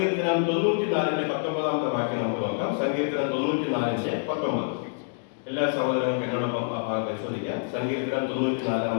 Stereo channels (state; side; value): silent; right; digital silence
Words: 94:19 വാക്യം നമുക്ക് നോക്കാം. സങ്കീർത്തനം 94:19. എല്ലാ സഹോദരങ്ങൾക്കും എന്നോടൊപ്പം ആ ഭാഗം പരിശോധിക്കാം. സങ്കീർത്തനം